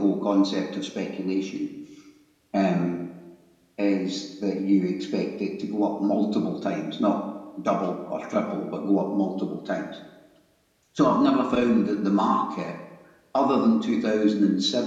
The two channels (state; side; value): identical; both; correlation 1.00